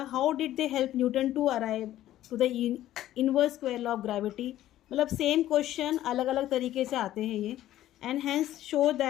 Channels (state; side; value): quieter; right; 13.5 dB